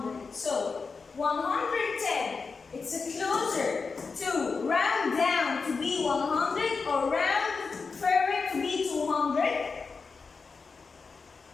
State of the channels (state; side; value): quieter; right; 4.8 dB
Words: So 110. It's closer to round down to be 100 or round further to be 200.